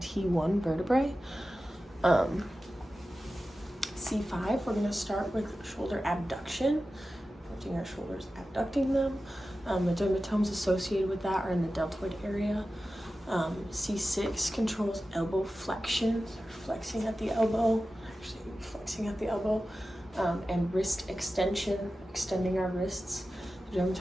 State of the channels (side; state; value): both; normal; correlation 0.94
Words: vertebrae. C5, we're going to start with shoulder abduction, lifting our shoulders, abducting them. The dermatomes associated with that are in the deltoid area. C6 controls elbow flexion, flexing at the elbow, and wrist extension, extending our wrists. The